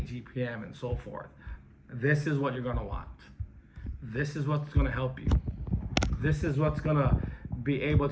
GPM and so forth, this is what you're gonna want. This is what's gonna help you. This is what's gonna be able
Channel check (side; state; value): both; identical; correlation 1.00